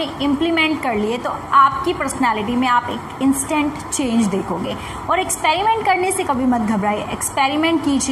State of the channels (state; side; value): identical; both; correlation 1.00